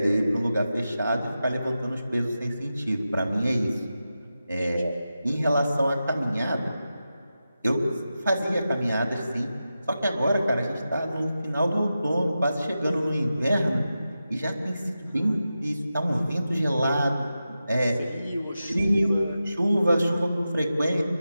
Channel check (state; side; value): inverted; both; correlation -0.91